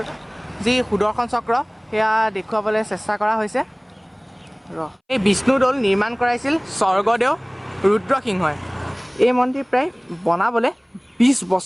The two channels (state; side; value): identical; both; correlation 1.00